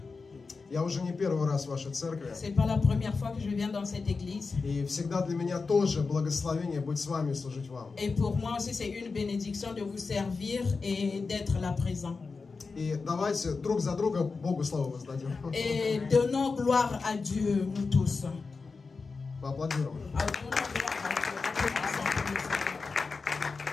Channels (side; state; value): right; quieter; 4.4 dB